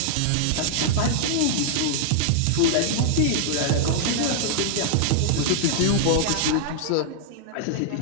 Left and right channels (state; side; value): different; both; correlation -0.01